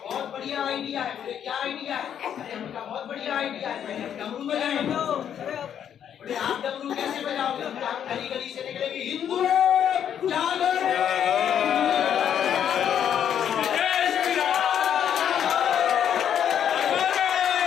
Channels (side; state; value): right; quieter; 9.1 dB